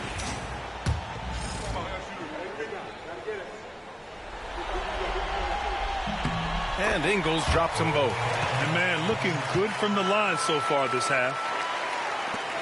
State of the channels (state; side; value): identical; both; correlation 1.00